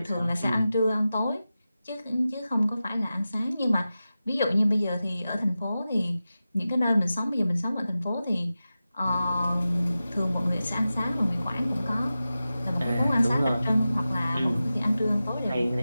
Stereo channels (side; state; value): both; inverted; correlation -0.94